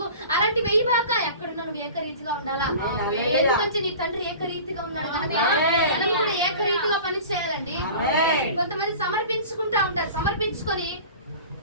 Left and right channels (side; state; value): both; inverted; correlation -0.39